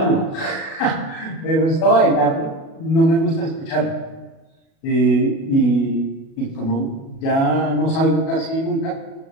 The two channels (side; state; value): right; late; 37 ms